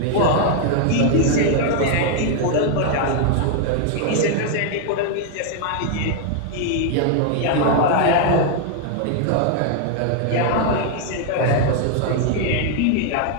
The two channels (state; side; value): different; both; correlation 0.00